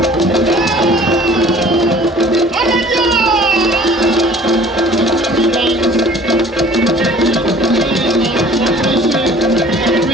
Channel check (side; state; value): both; normal; correlation 0.50